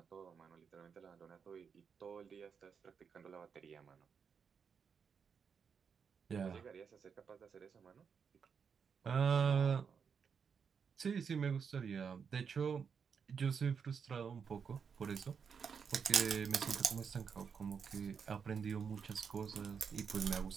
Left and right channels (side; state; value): left; quieter; 6.4 dB